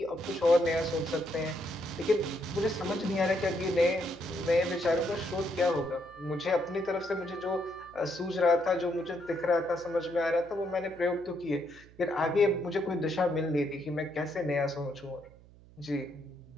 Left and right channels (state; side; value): noise; right; hum, 23 dB below the sound